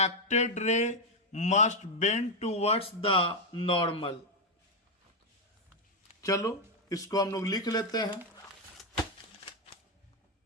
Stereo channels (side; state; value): both; normal; correlation 0.04